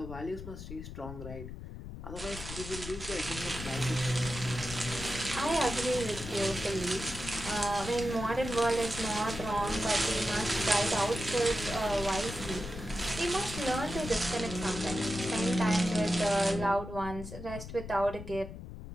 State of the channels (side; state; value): left; noise; rumble, 10 dB below the sound